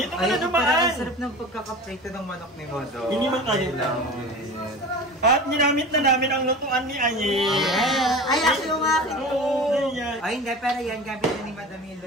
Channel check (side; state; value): both; normal; correlation 0.34